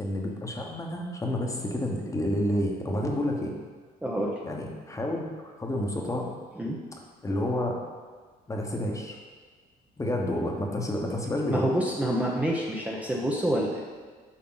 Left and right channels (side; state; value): both; normal; correlation 0.74